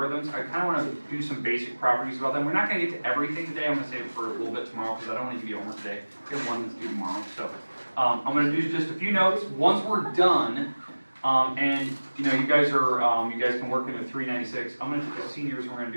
I kind of want to do some basic properties about them. We're not going to get to everything today. I'm going to save it for a little bit tomorrow because I don't want to give you homework today. I have one that's due tomorrow. So I'm going to do just a few notes. Once we're done, and you know, you guys can work into 396. I'm going to take the seniors and we're going to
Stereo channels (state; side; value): inverted; both; correlation -1.00